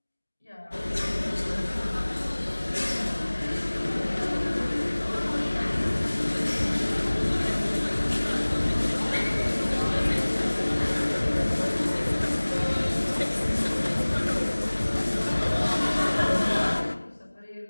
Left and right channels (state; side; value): inverted; both; correlation -1.00